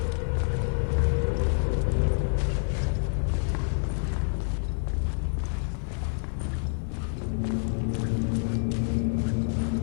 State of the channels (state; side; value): silent; right; digital silence